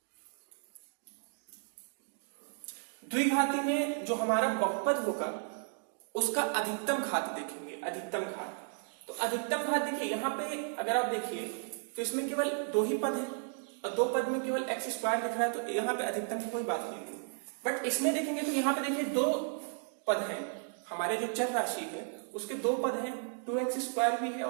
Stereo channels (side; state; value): left; silent; 55 dB below the other